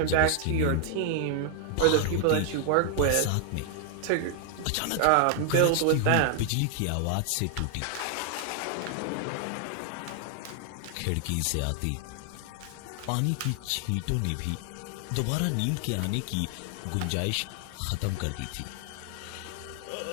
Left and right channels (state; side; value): different; both; correlation 0.00